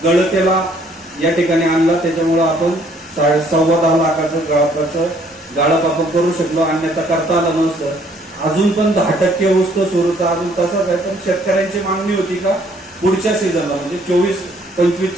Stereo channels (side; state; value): both; normal; correlation 0.63